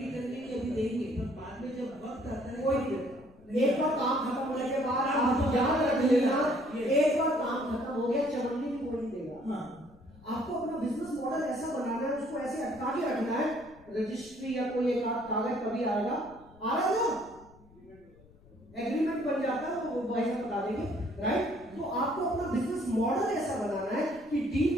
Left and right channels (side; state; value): left; noise; rumble, 25 dB below the sound